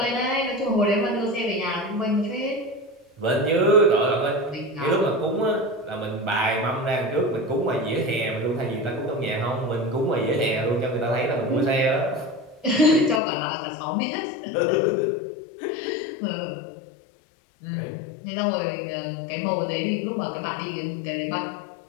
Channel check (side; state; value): right; drops out; at 13.2 s